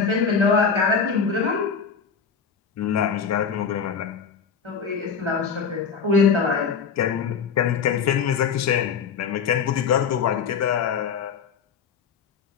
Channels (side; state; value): right; quieter; 6.4 dB